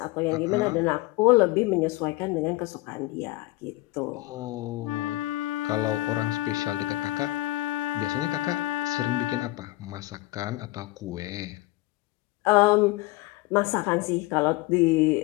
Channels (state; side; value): quieter; right; 19.8 dB